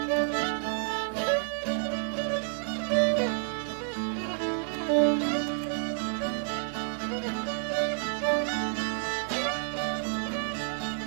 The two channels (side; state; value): left; silent; digital silence